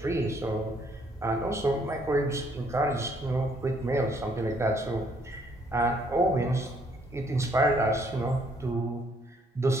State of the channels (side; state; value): both; normal; correlation 0.67